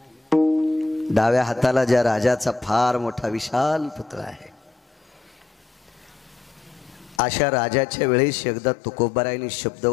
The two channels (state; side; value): drops out; right; at 7.2 s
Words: डाव्या हाताला ज्या राजाचा फार मोठा विशाल पुतळा आहे, अशा राजाच्या वेळेस एकदा तुकोबारायने शब्द